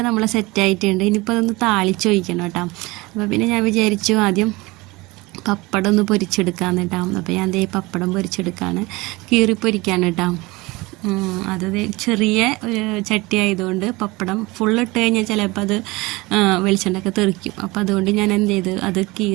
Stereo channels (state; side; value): quieter; left; 22.6 dB